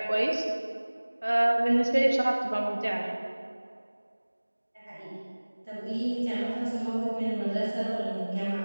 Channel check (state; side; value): inverted; both; correlation -1.00